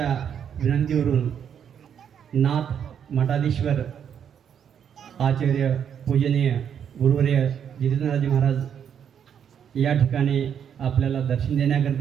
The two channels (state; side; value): quieter; left; 8.3 dB